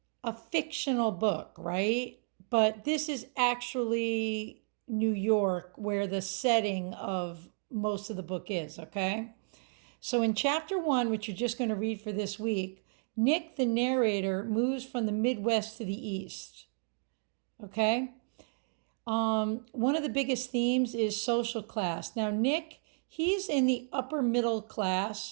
a fictional book, right? But this is actually New York, where the setting of most of the book is, okay? So in chapter one, which you're just going to read for this week, Nick, the narrator, moves from the Midwest to the East, okay? One of the biggest themes is social class. Now, Nick, he's in the upper middle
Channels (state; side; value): silent; left; 56 dB below the other